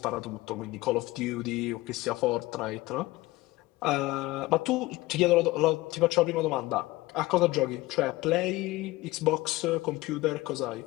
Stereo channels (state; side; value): quieter; right; 19.5 dB